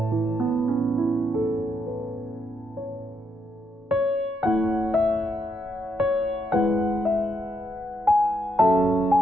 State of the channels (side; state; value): both; normal; correlation 0.79